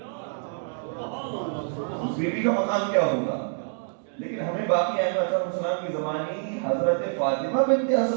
اس بیوی کا مقام کیا ہوگا. لیکن ہمیں باقی ائمہ اعظم السلام کی زمانی حضرت فاطمہ بنت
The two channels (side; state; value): left; silent; digital silence